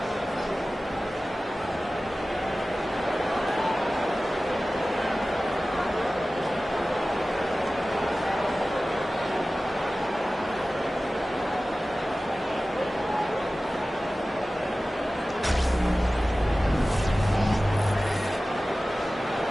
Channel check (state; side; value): normal; both; correlation 0.96